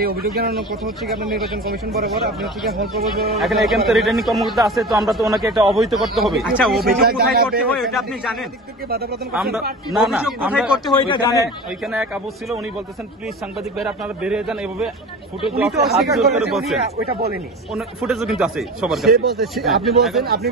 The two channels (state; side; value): normal; both; correlation 0.33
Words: অভিযোগ জানানোর কথা হচ্ছে কি আপনার নির্বাচন কমিশন বরাবর, আপনি হচ্ছে কি হল প্রবেশ এখানে তো রিটার্নিং কর্মকর্তা আছে, তো আমরা তো ওনাকে একটা অবহিত করতে হবে। আচ্ছা, অভিযোগ কোথায় করতে হয় এটা আপনি জানেন? আমরা না না আমরা করতে হয় এটা জানেন। ওইখানে এক আবু ছিল, উনি বলতেছেন প্লিজ সাংবাদিক ভাইরা আপনারা বেরিয়ে যান, এভাবে ফুটেজ হাত জোর করে বলছেন। ওইটা বলেনি, ফুটেজও কিন্তু আছে সবার কাছে। আপনি